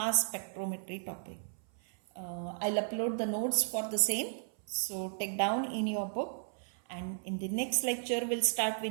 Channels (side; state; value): left; silent; 55 dB below the other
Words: spectrometry topic. I'll upload the notes for the same, so take down in your book, and in the next lecture we'll start